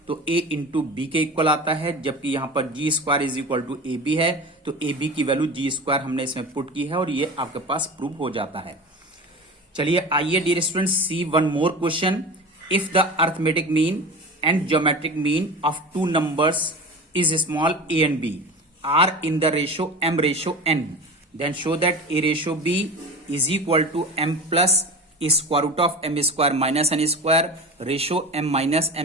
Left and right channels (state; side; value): normal; both; correlation 0.32